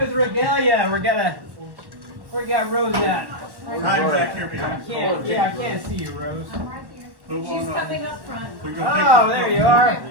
Regalia. We got Rose at. I can't see you, Rose. She's coming up front. Oh, there you are.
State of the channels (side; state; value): left; late; 1.1 ms